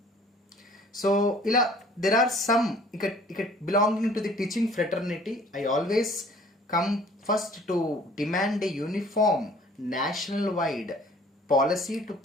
So ఇలా దెర్ ఆర్ సమ్ ఇక belonging to the teaching fraternity, I always come first to demand a uniform national wide policy to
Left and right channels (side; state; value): both; normal; correlation 0.53